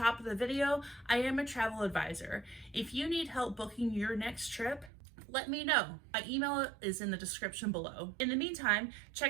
of the video, I am a travel advisor. If you need help booking your next trip, let me know. My email is in the description below. In the meantime,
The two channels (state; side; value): drops out; left; at 4.9 s